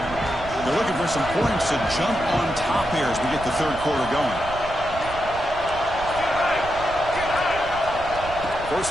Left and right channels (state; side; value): noise; right; rumble, 12 dB below the sound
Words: They're looking for some points to jump on top here as we get the 3rd quarter going.